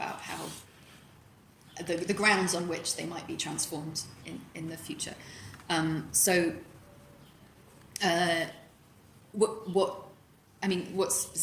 how the grounds on which they might be transformed in the future. What's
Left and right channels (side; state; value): both; identical; correlation 1.00